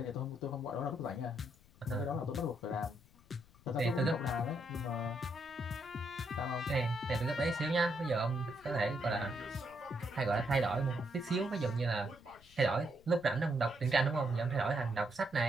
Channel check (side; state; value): left; noise; rumble, 26 dB below the sound